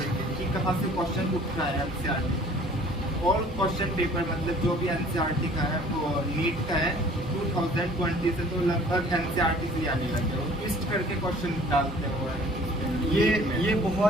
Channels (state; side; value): normal; both; correlation 0.52